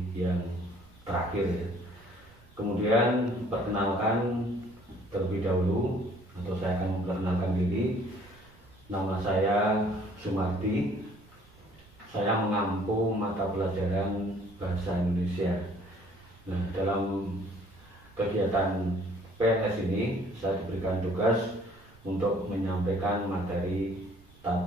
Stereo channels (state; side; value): noise; right; rumble, 27 dB below the sound